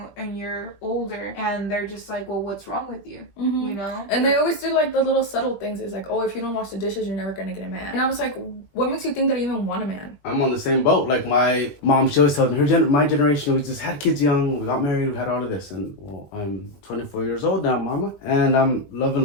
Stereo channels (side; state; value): right; late; 20 ms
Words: and you're older, and they're just like, well, what's wrong with you? And they always do like the little subtle things. It's like, oh, if you don't wash the dishes, you're never gonna get a man. And I was like, what makes you think that I even want a man? I'm on the same boat. Like my mom, she always tells me my generation, we just had kids young, we got married, we had all of this. And well, I'm 24 years old now, mama, and I'm loving